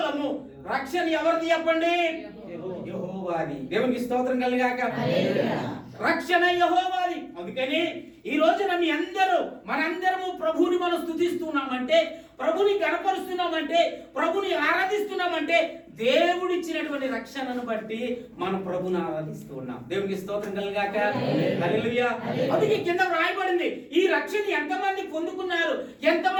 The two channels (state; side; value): identical; both; correlation 1.00